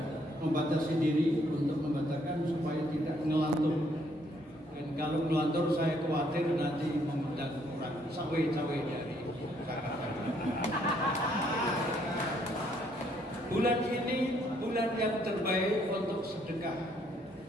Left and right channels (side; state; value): both; normal; correlation 0.68